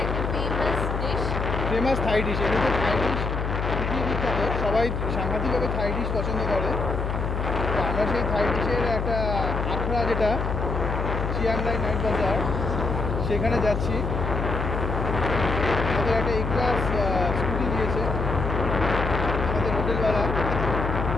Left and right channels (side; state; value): left; noise; hum, 2 dB below the sound